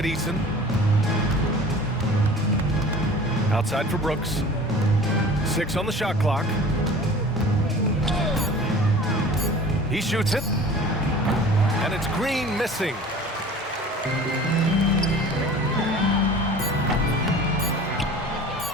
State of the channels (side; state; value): both; normal; correlation 0.43